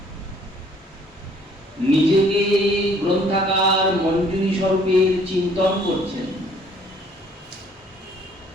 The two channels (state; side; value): normal; both; correlation 0.59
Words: নিজেকে গ্রন্থাকার মঞ্জুরি স্বরূপের চিন্তন করছেন।